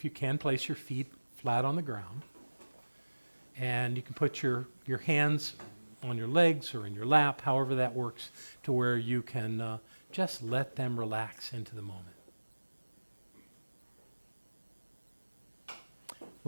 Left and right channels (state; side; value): inverted; both; correlation -1.00